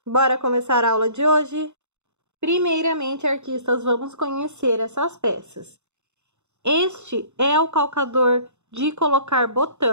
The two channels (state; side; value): late; left; 0.83 ms